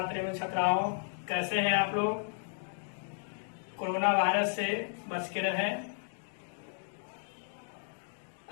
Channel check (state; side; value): silent; right; 55 dB below the other